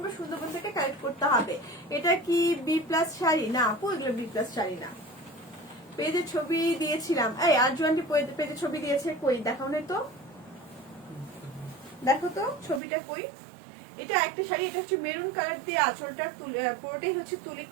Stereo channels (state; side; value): drops out; left; at 12.8 s